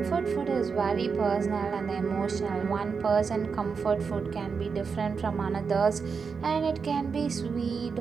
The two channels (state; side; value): quieter; left; 5.5 dB